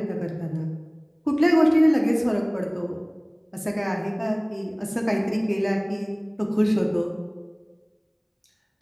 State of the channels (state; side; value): identical; both; correlation 1.00